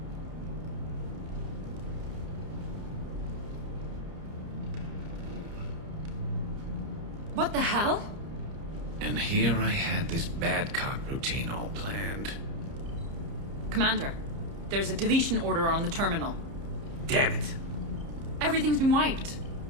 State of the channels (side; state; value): left; late; 30 ms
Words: What the hell? And here I had this bad cop routine all planned. Commander, there's a deletion order on the terminal. Damn it. Everything's been wiped.